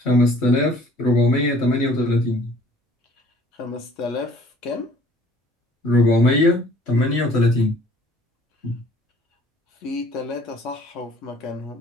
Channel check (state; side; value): normal; both; correlation 0.55